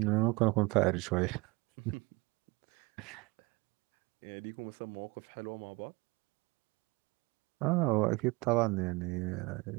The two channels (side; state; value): left; quieter; 25.5 dB